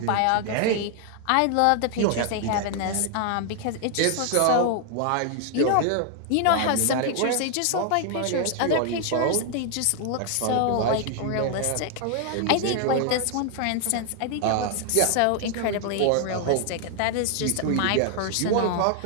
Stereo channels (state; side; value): different; both; correlation 0.00